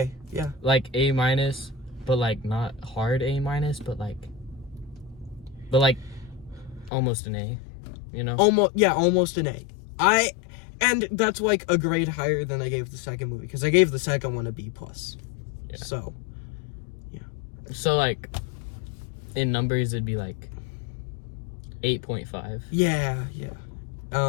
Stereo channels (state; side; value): drops out; right; at 6.9 s